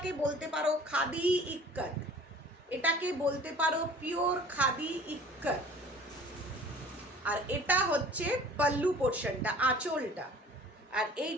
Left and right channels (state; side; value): normal; both; correlation 0.47